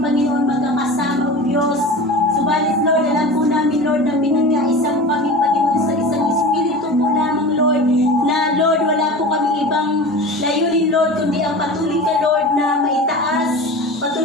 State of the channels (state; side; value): normal; both; correlation 0.33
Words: magkakasama, O Diyos. Subalit, Lord, alam po namin, Lord, na pinagkaisa mo kami, Panginoon, sa isang Espiritu po lamang, Lord, na, Lord, wala po kami ibang layunin, Lord, kundi ang patuloy ka, Lord, na maitaas,